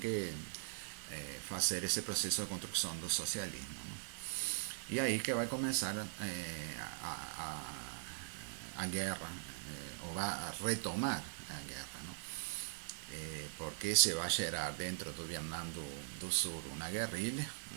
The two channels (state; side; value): silent; left; digital silence